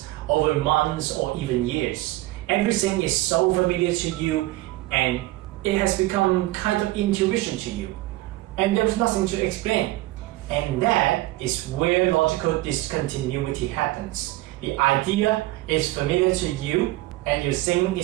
over months or even years. Everything is so familiar to you and it has become kind of intuition to you. And there's nothing to explain. And that is where logical discontinuity happens. The idea is familiar to you and you think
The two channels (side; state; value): left; quieter; 18.3 dB